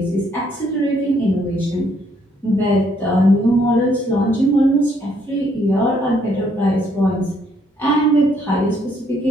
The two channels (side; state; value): both; normal; correlation 0.69